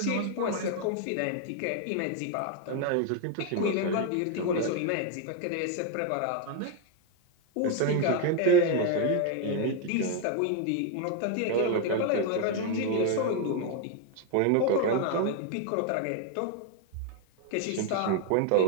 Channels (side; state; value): both; different; correlation 0.01